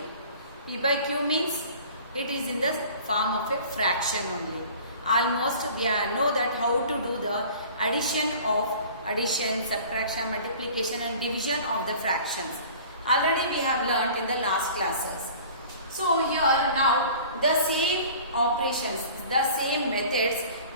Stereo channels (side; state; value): both; inverted; correlation -0.45